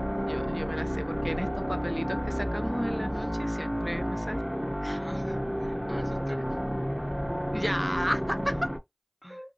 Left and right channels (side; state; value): both; identical; correlation 1.00